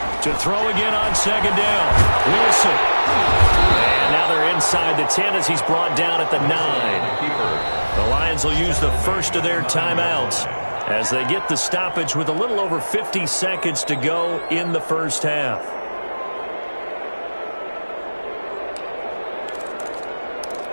To throw again on 2nd down. Wilson. And now they're inside the 10 as he's brought down at the 9. The Lions will use the first of their timeouts as they get the stoppage with a little over 50 seconds to go in the first half.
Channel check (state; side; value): inverted; both; correlation -1.00